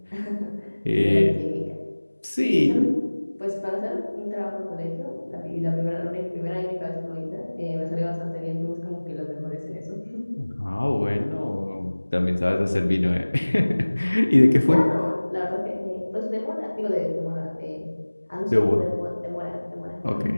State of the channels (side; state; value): both; inverted; correlation -1.00